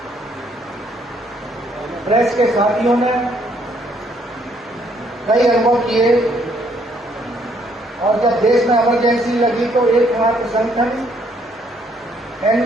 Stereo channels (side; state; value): both; normal; correlation 0.68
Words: प्रेस के साथियों ने कई अनुभव किए और जब देश में इमरजेंसी लगी तो एकमात्र संगठन